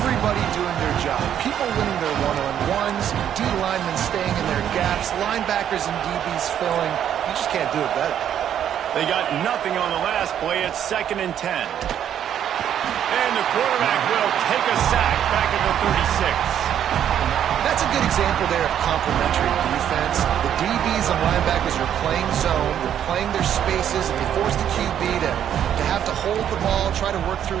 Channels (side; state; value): left; quieter; 9.8 dB